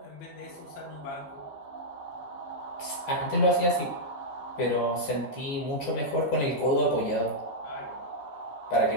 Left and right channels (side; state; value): right; late; 14 ms